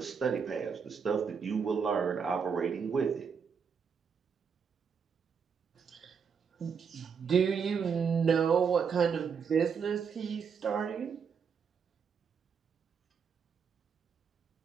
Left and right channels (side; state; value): left; quieter; 6.3 dB